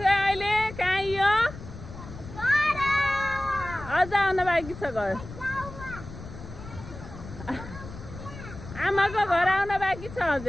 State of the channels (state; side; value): noise; left; rumble, 13 dB below the sound